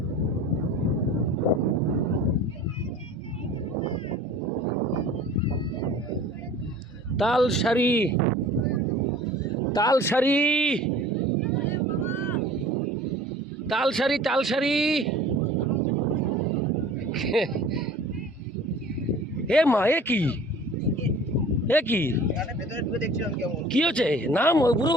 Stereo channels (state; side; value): normal; both; correlation 0.45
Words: তালসারি। এ মা, এ কি কি হচ্ছে? নাম